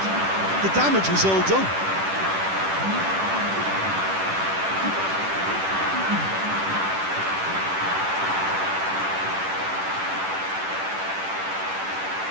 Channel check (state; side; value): late; left; 10 ms